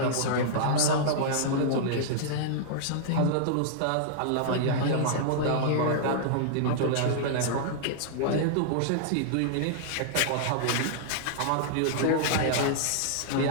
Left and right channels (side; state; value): both; different; correlation -0.01